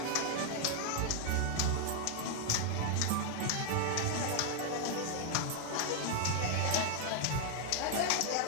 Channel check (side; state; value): both; different; correlation 0.00